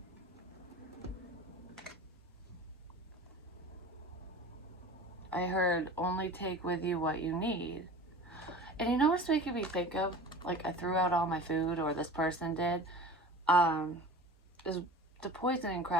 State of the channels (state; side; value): normal; both; correlation 0.38